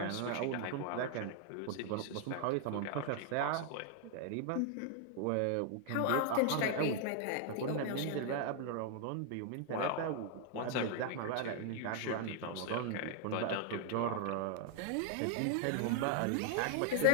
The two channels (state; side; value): different; both; correlation 0.00